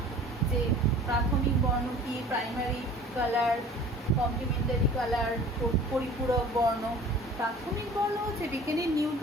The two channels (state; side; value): normal; both; correlation 0.46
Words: যে প্রাথমিক বর্ণ কি, প্রাইমারি কালার, কমপ্লিমেন্টারি কালার, পরিপূরক বর্ণ। প্রাথমিক বর্ণ হচ্ছে বিজ্ঞানী